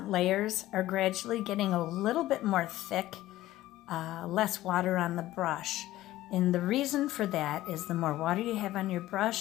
layers are gradually getting a little bit more thick, less water on the brush. And the reason for that is the more water you have on your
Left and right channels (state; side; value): quieter; right; 15.4 dB